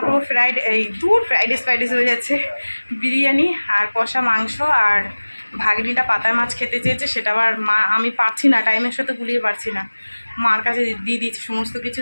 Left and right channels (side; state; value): both; inverted; correlation -1.00